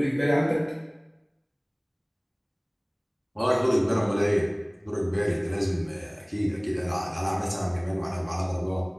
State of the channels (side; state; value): both; identical; correlation 1.00